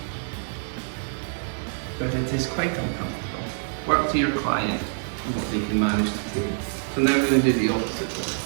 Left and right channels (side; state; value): left; silent; digital silence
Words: But it is quite uncomfortable. Work to your client and what they can manage to do. So now we're going to do the opposite one.